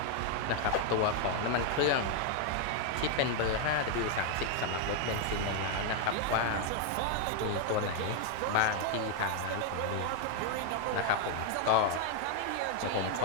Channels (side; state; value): both; different; correlation 0.00